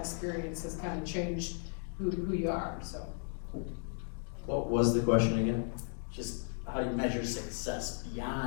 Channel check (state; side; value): silent; right; 54 dB below the other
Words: has kind of changed who you are, so. What was the question again? Just how do you measure success